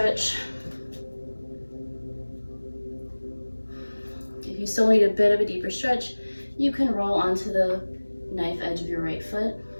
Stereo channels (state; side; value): inverted; both; correlation -1.00